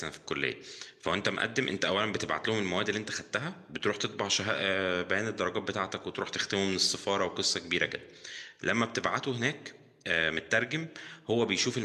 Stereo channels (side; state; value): both; identical; correlation 1.00